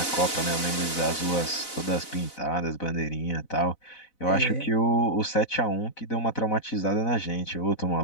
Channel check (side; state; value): right; late; 4.0 ms